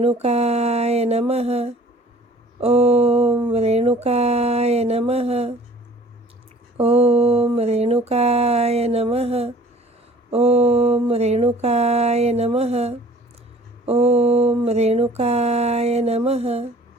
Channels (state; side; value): normal; both; correlation 0.50